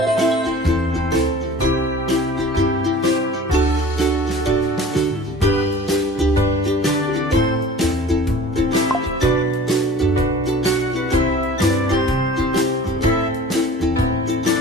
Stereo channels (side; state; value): both; normal; correlation 0.44